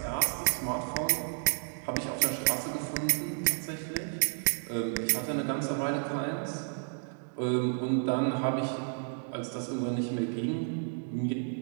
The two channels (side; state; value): left; silent; digital silence